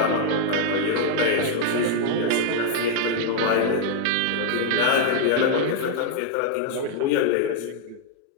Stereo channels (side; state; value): both; different; correlation 0.00